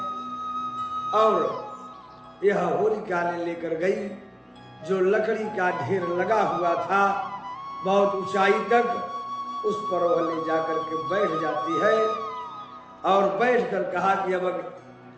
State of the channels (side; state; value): both; identical; correlation 1.00